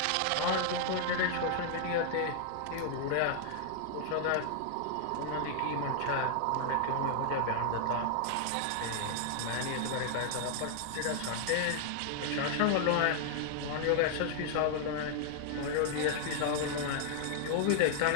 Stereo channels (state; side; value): different; both; correlation -0.01